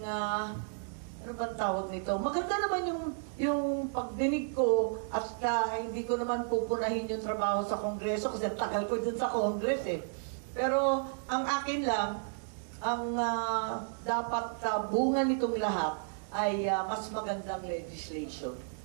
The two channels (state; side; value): silent; left; 56 dB below the other